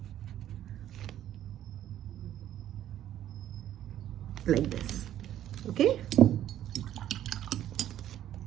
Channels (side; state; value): left; quieter; 11.8 dB